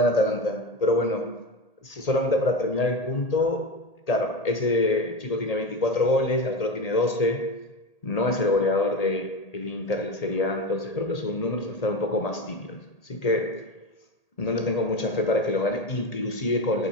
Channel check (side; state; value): right; late; 1.8 ms